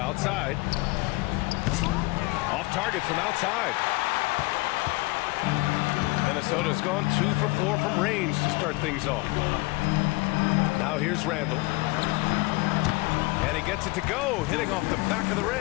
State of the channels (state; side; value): quieter; right; 23.2 dB